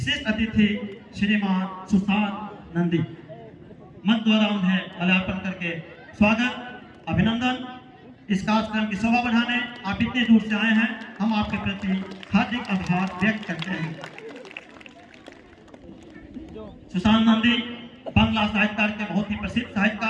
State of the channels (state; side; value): identical; both; correlation 1.00